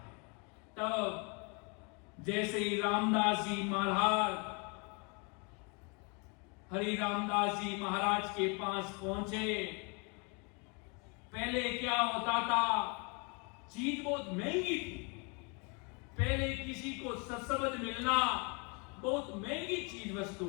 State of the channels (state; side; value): quieter; right; 33.0 dB